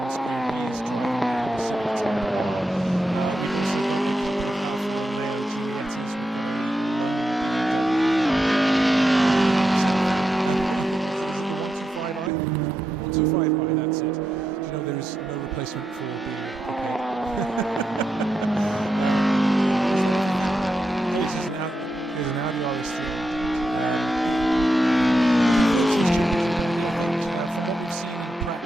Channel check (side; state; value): both; normal; correlation 0.86